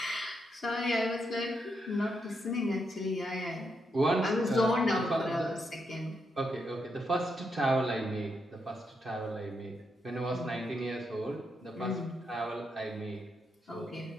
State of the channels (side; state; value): both; normal; correlation 0.81